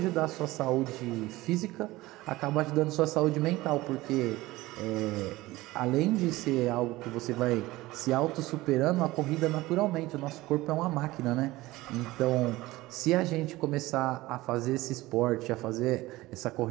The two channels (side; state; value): left; quieter; 18.8 dB